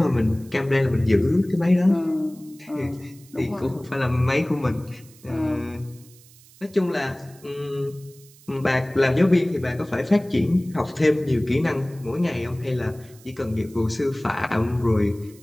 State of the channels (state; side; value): noise; right; hiss, 25 dB below the sound